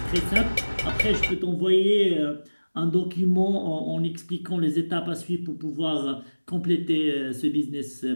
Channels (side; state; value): both; inverted; correlation -1.00